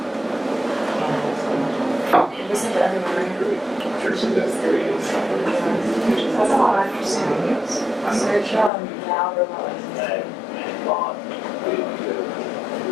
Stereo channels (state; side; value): drops out; right; at 8.7 s